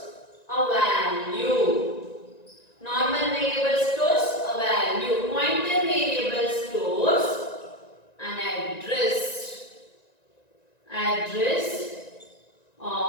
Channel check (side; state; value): right; late; 1.9 ms